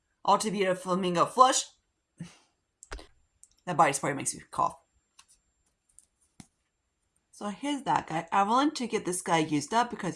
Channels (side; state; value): both; identical; correlation 1.00